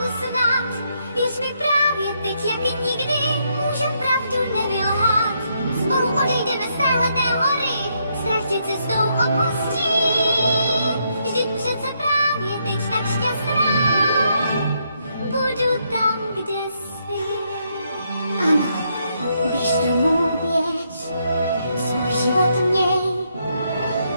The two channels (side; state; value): both; inverted; correlation -0.76